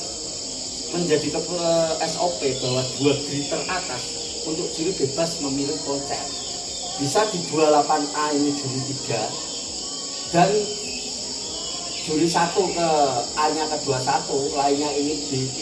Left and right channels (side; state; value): both; identical; correlation 1.00